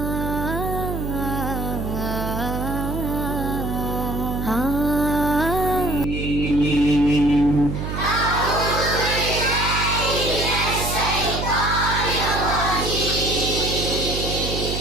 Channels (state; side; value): noise; right; hum, 4 dB below the sound